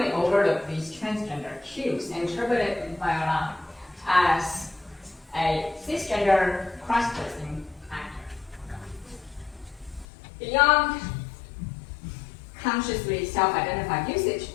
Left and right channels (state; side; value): drops out; right; at 10.1 s